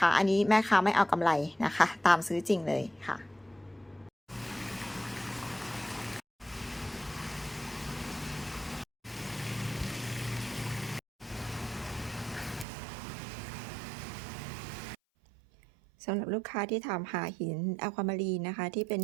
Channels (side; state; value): left; drops out; at 12.7 s